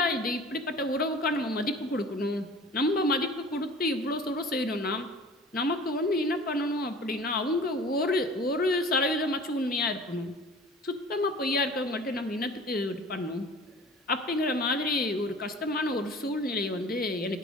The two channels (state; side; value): normal; both; correlation 0.43